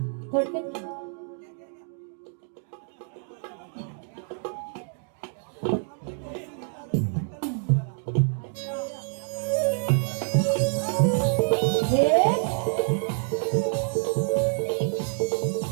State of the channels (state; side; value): silent; left; 56 dB below the other